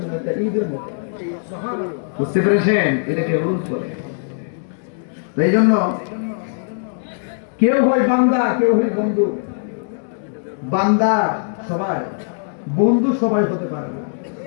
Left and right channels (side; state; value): right; silent; digital silence